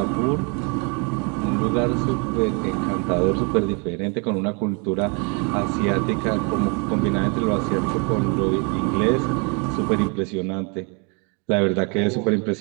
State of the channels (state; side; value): quieter; left; 33.6 dB